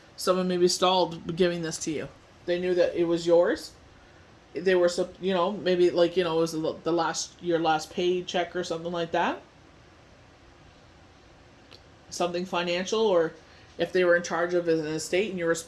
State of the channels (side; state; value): both; identical; correlation 1.00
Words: Someone maybe stalled giving this to you. They knew that it was yours. They were, maybe like, it was your last paycheck or something like that. Something financial, or if they were in charge of an estate and you were